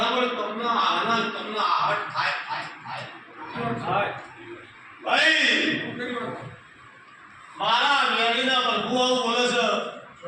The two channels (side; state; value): both; identical; correlation 1.00